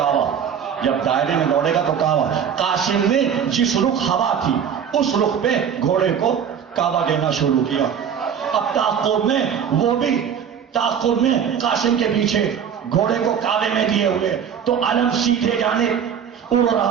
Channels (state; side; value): quieter; left; 7.9 dB